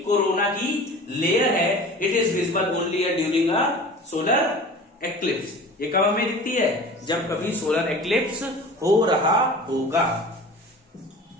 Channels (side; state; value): both; normal; correlation 0.39